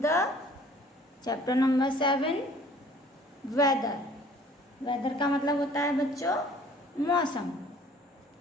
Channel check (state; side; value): normal; both; correlation 0.53